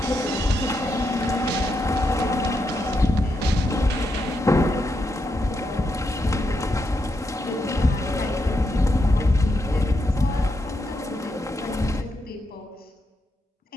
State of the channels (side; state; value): both; normal; correlation 0.83